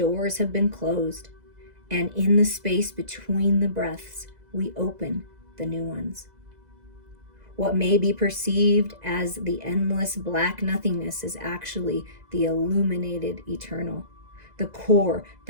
have been closed, and in the space between the breaths, we open the new ones. What may be perceived as the endless black nothingness is actually the illuminated eternal, the core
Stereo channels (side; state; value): left; late; 2.0 ms